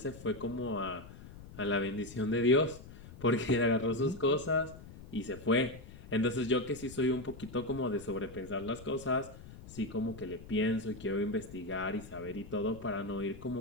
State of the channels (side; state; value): left; noise; rumble, 16 dB below the sound